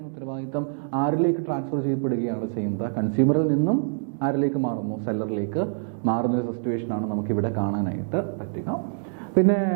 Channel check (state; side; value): silent; left; digital silence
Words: ഉത്തരവാദിത്തം ആരിലേക്ക് ട്രാൻസ്ഫർ ചെയ്യപ്പെടുകയാണ് ചെയ്യുന്നത്? കൺസ്യൂമറിൽ നിന്നും ആരിലേക്ക് മാറുന്നു? സെല്ലറിലേക്ക് മാറുന്നൊരു സിറ്റുവേഷനാണ് നമുക്കിവിടെ കാണാനായിട്ട് പറ്റുക. പിന്നെ